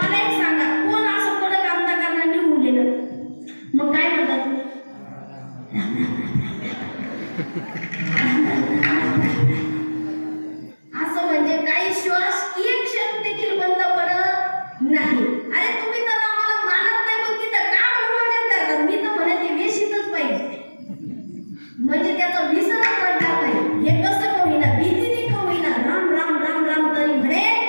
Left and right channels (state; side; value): inverted; both; correlation -1.00